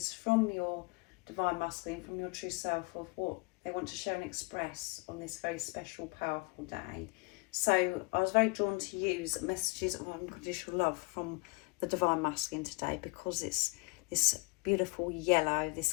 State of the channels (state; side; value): quieter; right; 29.2 dB